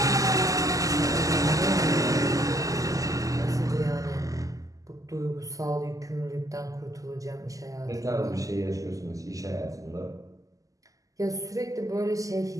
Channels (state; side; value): late; left; 0.17 ms